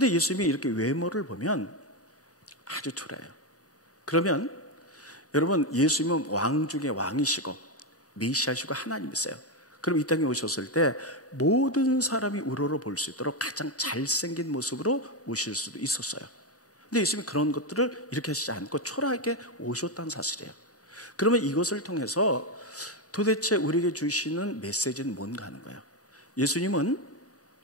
예수님이 이렇게 외모를 보면 아주 초라해요. 그러면 여러분 예수님은 왕 중에 왕이시고 메시아시고 하나님이세요. 그럼 이 땅에 오셨을 때 모든 사람이 우러러 볼 수 있도록 가장 잘생긴 모습으로 오실 수도 있었어요. 근데 예수님이 그런 것들을 이렇게 하시지 않고 초라하게 오셨다는 사실이에요. 그러면 이것을 통해서 도대체 우리에게 주시는 메시지는 뭔가 하는 거예요. 예수님은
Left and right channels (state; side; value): normal; both; correlation 0.09